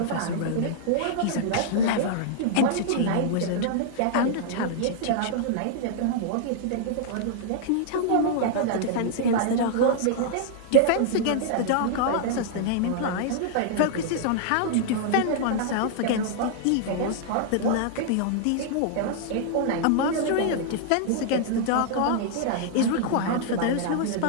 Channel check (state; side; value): different; both; correlation -0.01